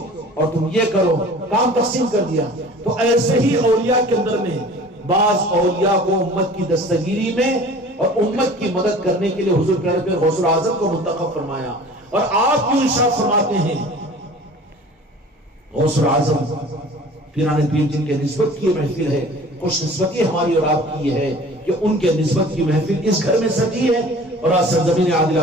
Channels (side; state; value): both; normal; correlation 0.44